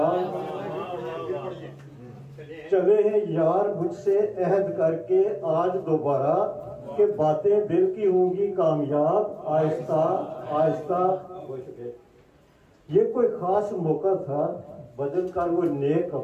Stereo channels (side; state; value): both; identical; correlation 1.00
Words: चले हैं यार मुझसे अहद करके आज दोबारा, कि बातें दिल की होंगी कामयाब, आहिस्ता आहिस्ता। ये कोई खास मौका था, बदल कर वो नए